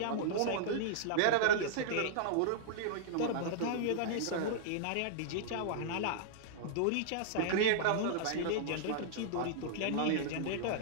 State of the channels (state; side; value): different; both; correlation -0.01